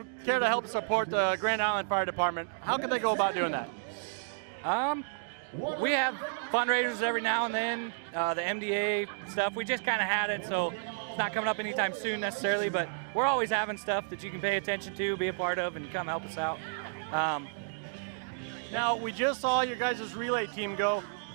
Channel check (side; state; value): left; silent; digital silence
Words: care to help support the Grand Island Fire Department? How can they go about doing that? We have fundraisers every now and then, the MDA stuff. We just kind of had it, so it's not coming up anytime soon necessarily, but we're always having stuff that you can pay attention to, be a part of, and come help us out. Now, we just saw your guys' relay team go.